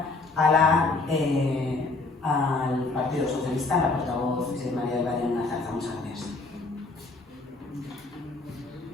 al Partido Socialista, la portavoz María del Valle Nazarza. Muchas gracias.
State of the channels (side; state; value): right; quieter; 3.5 dB